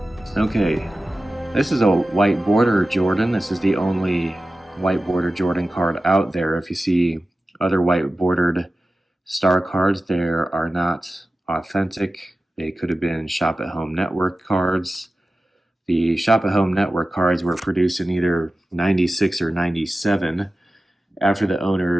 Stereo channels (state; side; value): normal; both; correlation 0.94